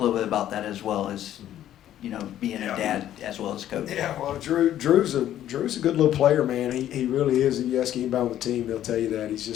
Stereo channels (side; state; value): right; quieter; 11.8 dB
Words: little bit about that as well as, being a dad as well as coach. Yeah, well, Drew's a good little player, man. He really is. If you ask anybody on the team, they'll tell you that.